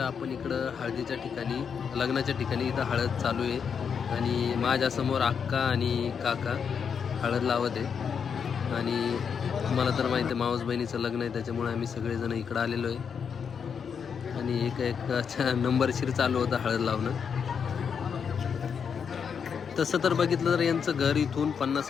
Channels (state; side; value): quieter; right; 6.8 dB